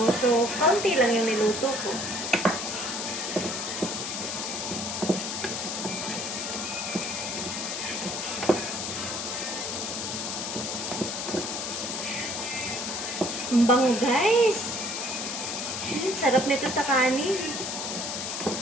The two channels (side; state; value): left; noise; hiss, 3 dB below the sound